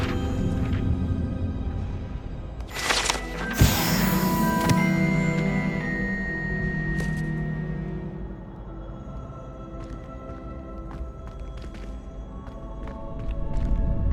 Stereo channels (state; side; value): identical; both; correlation 1.00